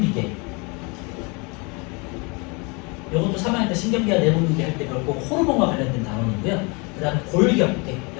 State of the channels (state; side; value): quieter; right; 30.0 dB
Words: 이것도 3학년 때 신경계와 내분비계 할 때 배웠고 호르몬과 관련된 단원이고요. 그 다음에 골격,